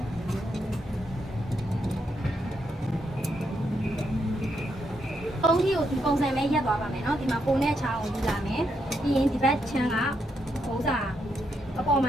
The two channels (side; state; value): both; normal; correlation 0.79